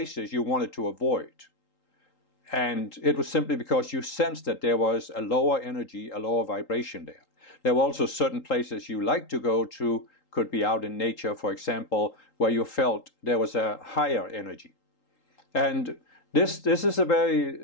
you wanted to avoid. And it was simply because you sensed that there was a lower energy, a lower vibration there. There were also certain places you liked to go to, could be out in nature, for example, where you felt there was a higher energy. And this is a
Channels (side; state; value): right; late; 3.8 ms